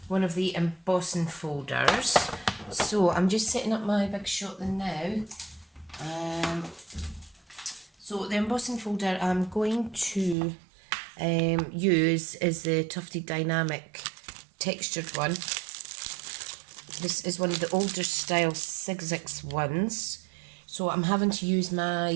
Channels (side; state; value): left; drops out; at 10.4 s